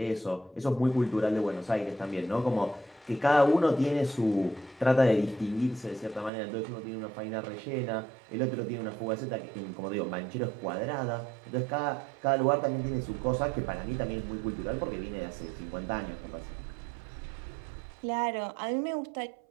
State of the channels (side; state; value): left; drops out; at 6.3 s